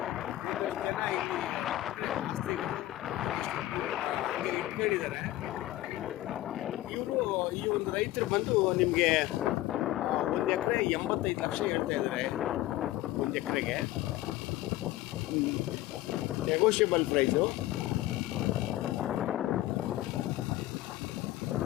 ಇಟ್ಕೊಂಡಿದ್ದಾರೆ. ಈ ಒಂದು ರೈತರು ಬಂದು ನಿಮಗೆ 1 ಎಕರೆ 85 ಲಕ್ಷ ಹೇಳ್ತಾ ಇದ್ದಾರೆ. 1 ಎಕರೆಗೆ ನೆಗೋಷಿಯಬಲ್ ಪ್ರೈಸು.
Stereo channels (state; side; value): quieter; right; 15.8 dB